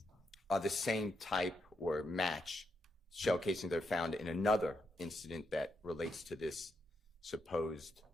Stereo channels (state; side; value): normal; both; correlation 0.81